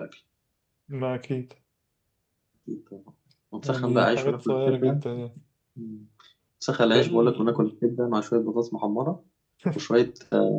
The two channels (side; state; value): both; identical; correlation 1.00